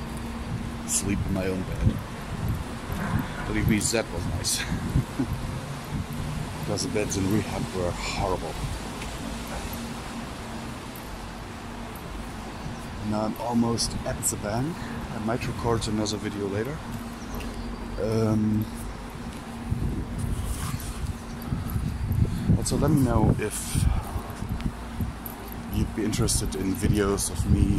sleep in my own bed. Believe me, that was nice. Because the beds in rehab were horrible. Now I'm almost at the bank. I might record another video later. Also, let me know if you'd be interested in videos of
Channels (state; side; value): identical; both; correlation 1.00